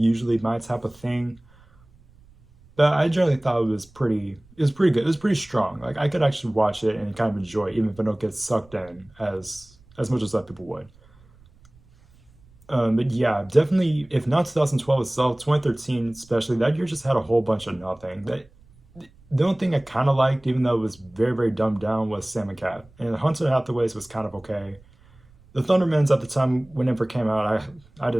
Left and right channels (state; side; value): noise; right; rumble, 28 dB below the sound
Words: my type of thing, but I generally thought it was pretty good. It was pretty strong. Like I could actually watch it and kind of enjoy it, even if I don't get sucked in as much as other people would. But yeah, definitely. If not 2012 itself, 2013 especially, that year just had a whole bunch of nothing. The only thing I kind of liked, even though it was very very dumbed down, was Sam and Cat. And Hunter Hathaways was kind of okay. The Thundermans at the time, whenever it came out, I